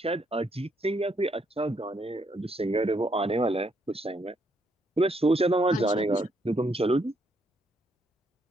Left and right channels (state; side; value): normal; both; correlation 0.74